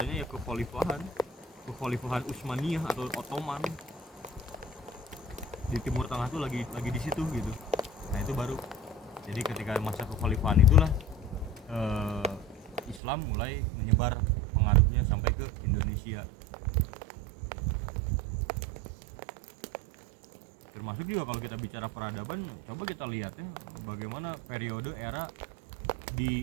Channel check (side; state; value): left; drops out; at 13.0 s